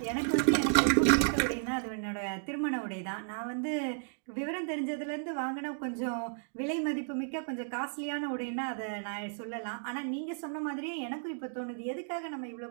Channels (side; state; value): left; silent; digital silence